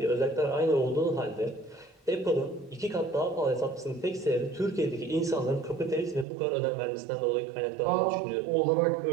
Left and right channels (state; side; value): drops out; left; at 6.2 s